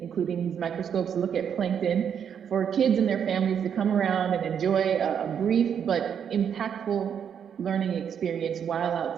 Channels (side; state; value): left; quieter; 8.0 dB